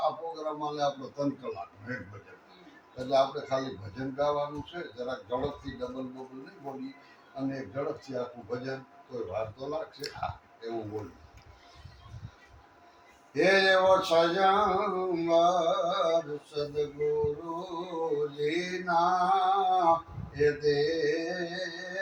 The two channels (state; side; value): identical; both; correlation 1.00